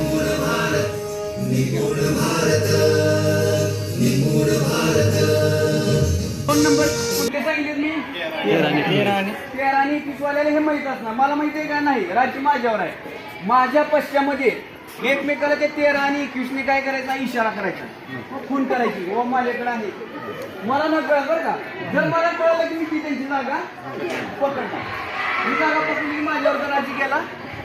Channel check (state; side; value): identical; both; correlation 1.00